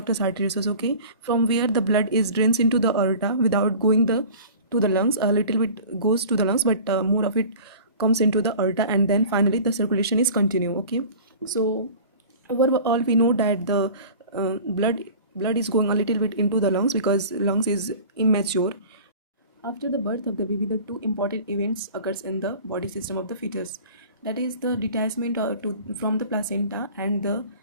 arteriosus. Okay, from where the blood is drains into the aorta without going the to the lungs. A little bit goes to the lungs, but more of it comes into the aorta, and then finally the circulation is continue. Okay, so overall we know that the blood is going a little bit into the lungs because lungs is immature. After the birth of the baby, the two important events occurs in the body system of the fetus, that is the detachment from the placenta and the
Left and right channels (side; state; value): both; inverted; correlation -0.41